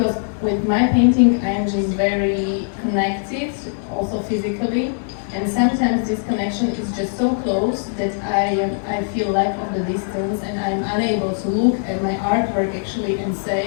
with my painting, I'm just very connected, also physically. And sometimes this connection is just so close that I feel lack of the distance, and I'm unable to look at my artwork actually and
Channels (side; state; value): right; silent; digital silence